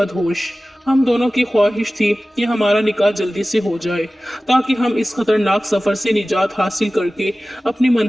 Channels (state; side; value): normal; both; correlation 0.97